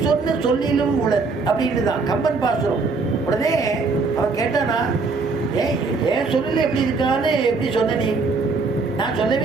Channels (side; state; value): left; quieter; 4.1 dB